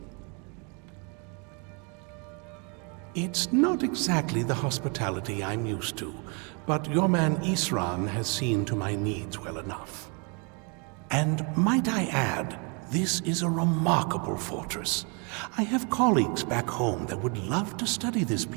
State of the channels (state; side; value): quieter; left; 34.7 dB